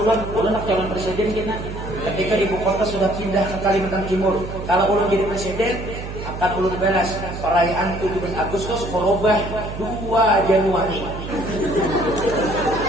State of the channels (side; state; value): right; noise; hum, 9 dB below the sound